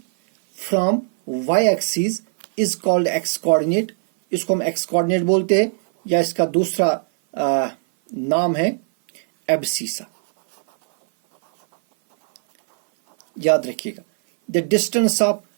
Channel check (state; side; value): silent; left; 57 dB below the other